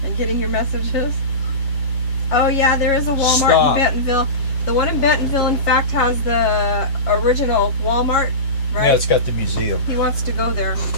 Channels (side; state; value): right; late; 7.3 ms